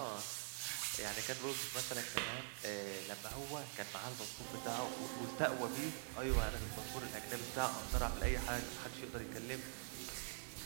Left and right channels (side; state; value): left; silent; digital silence